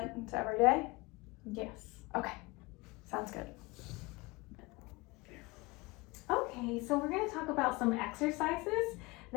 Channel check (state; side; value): quieter; right; 24.3 dB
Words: into every day? Yes. Okay, sounds good. Okay, so we're going to talk about some exercises